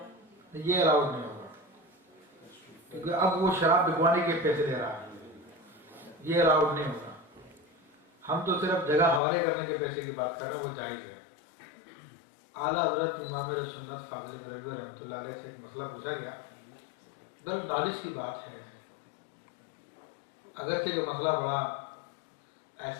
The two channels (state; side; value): drops out; right; at 9.2 s